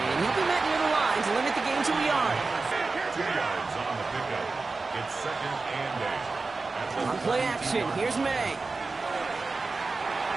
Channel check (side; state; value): left; quieter; 3.9 dB